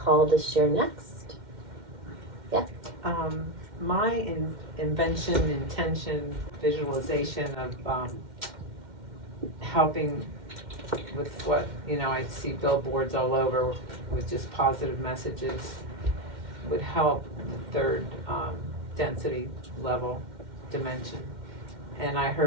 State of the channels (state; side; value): late; left; 2.1 ms